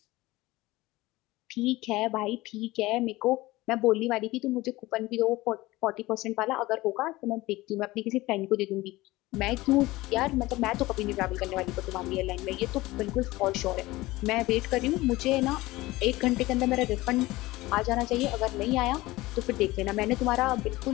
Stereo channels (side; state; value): right; quieter; 19.2 dB